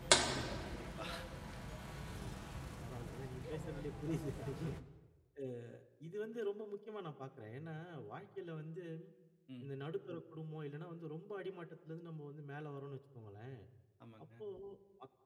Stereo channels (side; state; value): both; identical; correlation 1.00